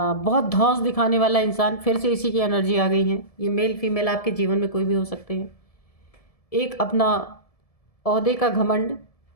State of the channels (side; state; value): right; late; 1.7 ms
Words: धौंस दिखाने वाला इंसान। फिर से इसी की एनर्जी आ गई है। ये मेल फीमेल आपके जीवन में कोई भी हो सकते हैं। एक अपना ओहदे का घमंड।